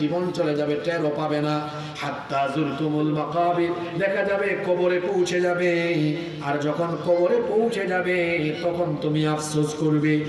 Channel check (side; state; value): both; identical; correlation 1.00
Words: জীবন চলে যাবে, টেরও পাবে না। হাত্তা যুরতুমুল মাকাবির, দেখা যাবে কবরে পৌঁছে যাবে। আর যখন কবরে পৌঁছে যাবে, তখন তুমি আফসোস করবে,